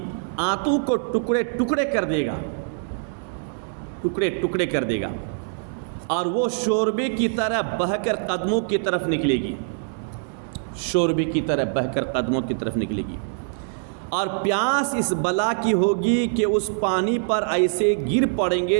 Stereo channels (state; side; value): silent; left; digital silence